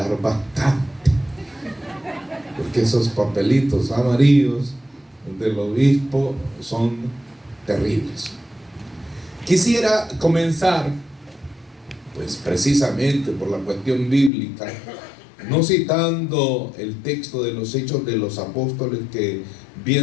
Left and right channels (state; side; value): drops out; right; at 14.3 s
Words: bastante, porque esos papelitos amarillos del obispo son terribles. Quisiera comenzar, pues precisamente por la cuestión bíblica, no citando el texto de los Hechos de los Apóstoles que